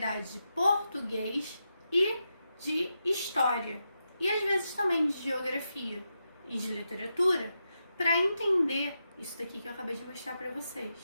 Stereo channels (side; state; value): both; inverted; correlation -0.87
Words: de português e de história, e às vezes também de geografia e de literatura, para entender isso daqui que eu acabei de mostrar para vocês,